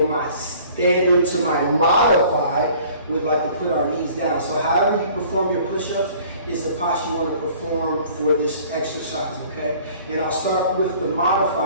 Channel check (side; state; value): both; inverted; correlation -0.52